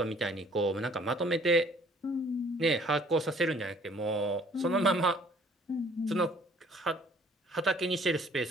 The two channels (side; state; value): both; normal; correlation 0.57